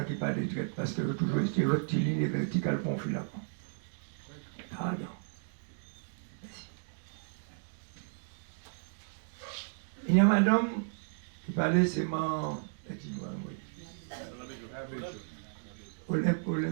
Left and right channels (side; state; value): left; silent; digital silence